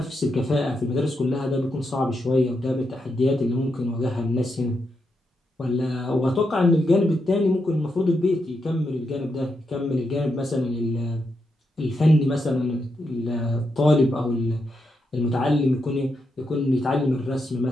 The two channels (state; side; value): normal; both; correlation 0.83